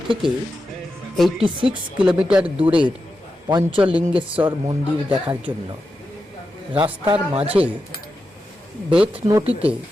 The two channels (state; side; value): normal; both; correlation 0.89